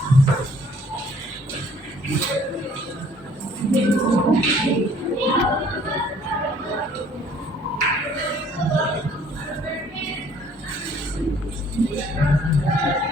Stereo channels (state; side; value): normal; both; correlation 0.57